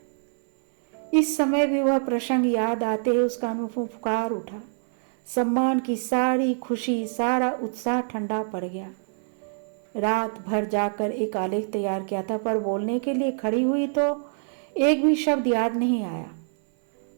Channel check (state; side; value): silent; left; 59 dB below the other